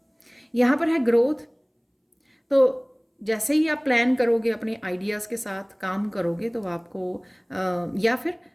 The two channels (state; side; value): identical; both; correlation 1.00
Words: यहाँ पर है ग्रोथ। तो जैसे ही आप प्लान करोगे, अपने आइडियाज़ के साथ काम करोगे, तो आपको या फिर